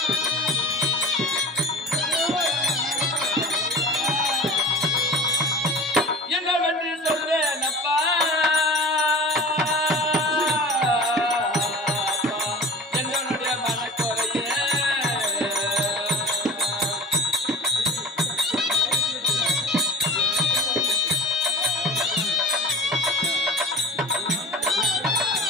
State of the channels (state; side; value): normal; both; correlation 0.38